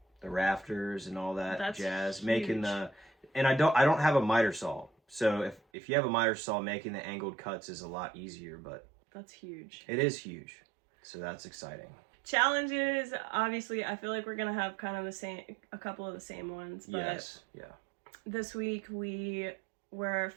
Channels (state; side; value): drops out; left; at 5.6 s